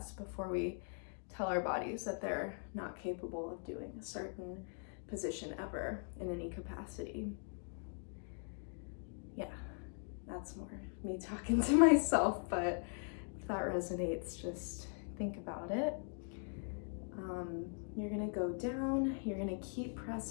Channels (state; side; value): silent; right; 51 dB below the other